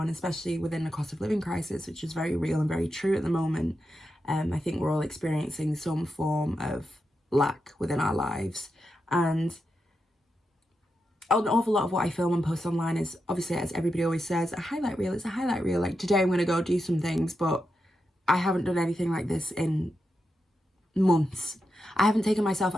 especially within the cost of living crisis, which is very real and very true at the moment. I think we're all experiencing some form of lack within our lives, and an awful lot of what I film and post online is, obviously, as everybody always says, a highlight reel. It's a highlight reel. Like, today I'm going to go do some things, but I haven't done anything like this in months. I haven't taken myself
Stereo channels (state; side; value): normal; both; correlation 0.87